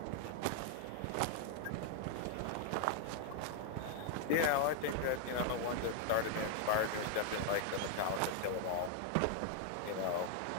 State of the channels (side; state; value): both; different; correlation 0.00